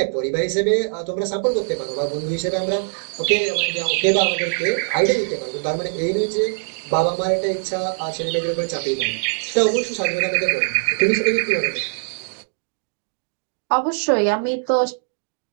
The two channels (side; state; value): left; silent; digital silence